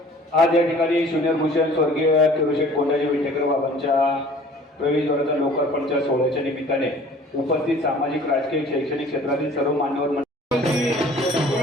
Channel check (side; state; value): both; normal; correlation 0.50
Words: आज या ठिकाणी ज्युनियर भूषण स्वर्गीय किरोशेठ कोंडाजी विटेकर बाबांच्या प्रवेशद्वाराच्या लोकार्पणच्या सोहळ्याच्या निमित्ताने उपस्थित सामाजिक, राजकीय, शैक्षणिक क्षेत्रातील सर्व मान्यवर